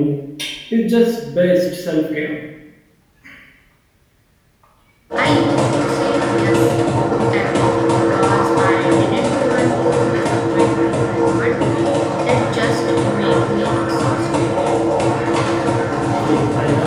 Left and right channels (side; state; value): both; identical; correlation 1.00